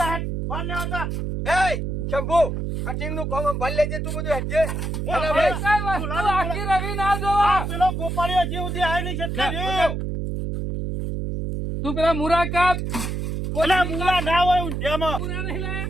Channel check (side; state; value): right; noise; hum, 3 dB below the sound